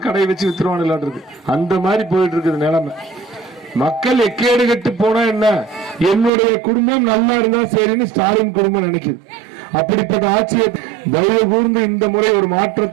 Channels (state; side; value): drops out; left; at 6.3 s